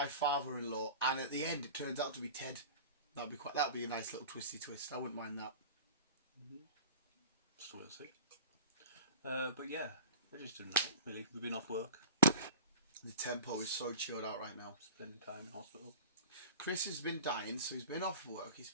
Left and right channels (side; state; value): both; inverted; correlation -0.38